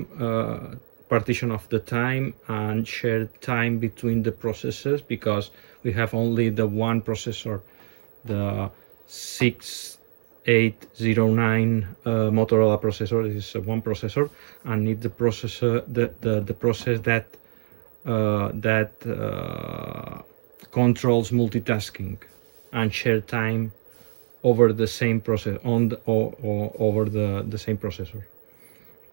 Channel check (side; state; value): left; silent; 62 dB below the other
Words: partition of the time and share time between the processes, because we have only the one processor, the 6809 Motorola processor. This is one processor, and need the processor the process that controls multitasking and share time over the same process over the same processor.